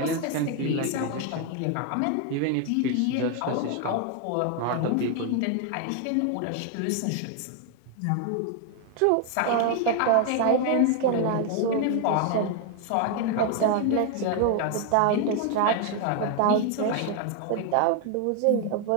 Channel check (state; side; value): different; both; correlation 0.01